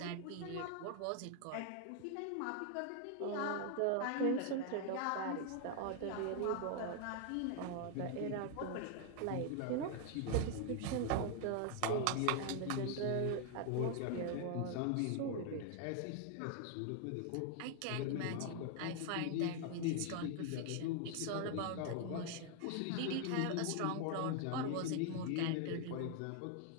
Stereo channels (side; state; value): both; different; correlation 0.00